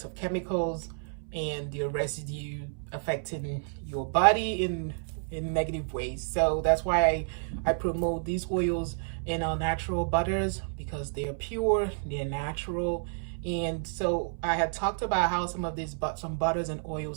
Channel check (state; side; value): silent; left; 58 dB below the other